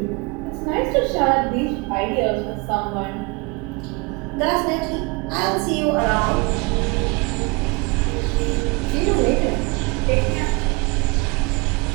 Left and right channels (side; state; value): left; quieter; 27.7 dB